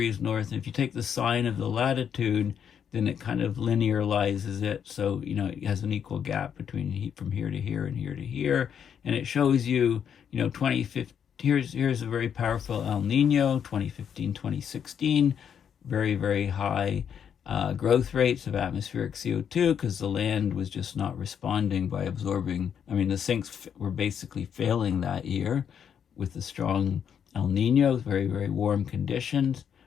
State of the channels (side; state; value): right; quieter; 8.1 dB